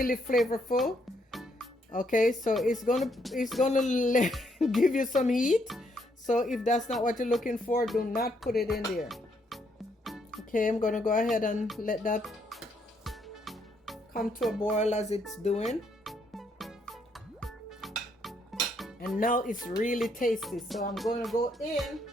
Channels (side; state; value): both; normal; correlation 0.73